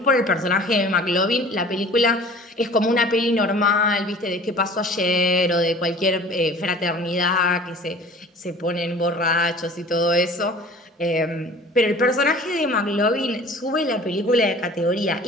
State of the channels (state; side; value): normal; both; correlation 0.45